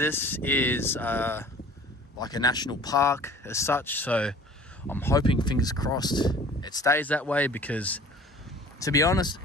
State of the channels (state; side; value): normal; both; correlation 0.47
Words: is like a national park as such. So I'm hoping, fingers crossed, it stays that way, because to be honest,